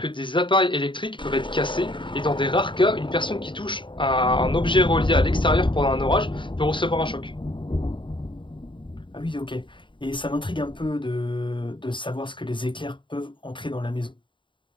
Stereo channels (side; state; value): right; late; 0.24 ms